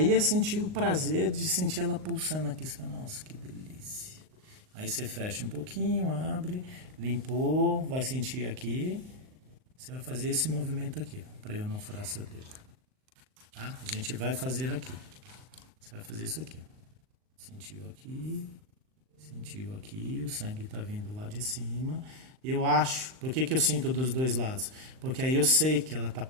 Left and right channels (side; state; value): left; late; 38 ms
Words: é sentir o prazer de sentir ela pulsando aqui. Você fala, nossa, que delícia. Aí você fecha um pouquinho, abre... Limpou, vai sentir aqui. Você vai fazer esse movimento aqui, para eu não furar seu dedo. Tá? A gente vai fazer aqui. Você vai fazer isso aqui. Sentiu aqui, o sangue está vindo lá de cima. Eu acho, por que eu sinto dos dois lados? Porque aí eu sei que ela está